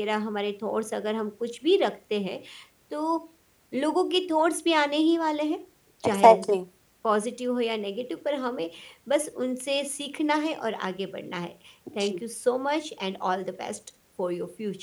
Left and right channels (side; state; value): both; identical; correlation 1.00